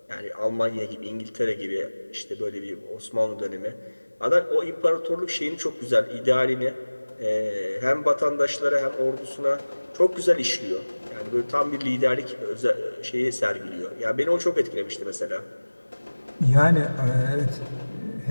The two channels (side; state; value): both; inverted; correlation -1.00